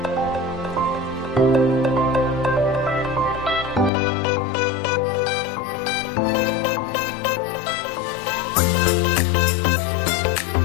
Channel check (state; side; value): drops out; right; at 3.9 s